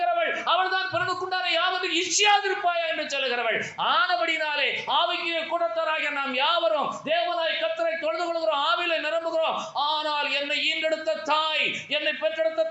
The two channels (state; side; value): identical; both; correlation 1.00